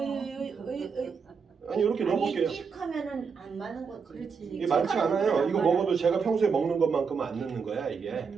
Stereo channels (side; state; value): left; quieter; 5.7 dB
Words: 아니 이렇게 넣어볼게요. 찍하면은 안 많은 거지. 그렇지. 이게 많지 않아요. 이거 먹어도 제가 평소에 먹는 것만큼은 안 넣는 거야 이게.